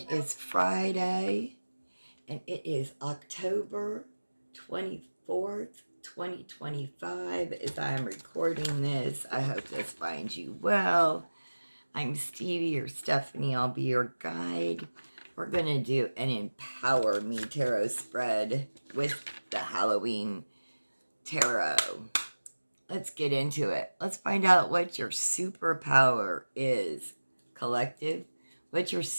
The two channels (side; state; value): both; inverted; correlation -1.00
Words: is Friday and it is October 24th, 2025 as I am recording this. I hope this finds you well. I'm Stevie or Stephanie. I'll be your guide. We're going to do an Empower Me Tarot spread with the Halloween Tarot. Let's get into it. Let's find out what your superpower is. Collective, what's your